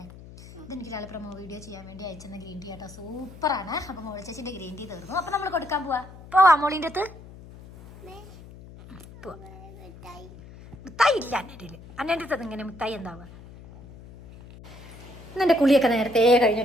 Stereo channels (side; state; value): left; noise; hum, 18 dB below the sound